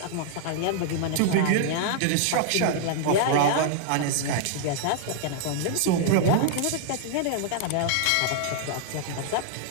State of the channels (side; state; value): both; different; correlation -0.01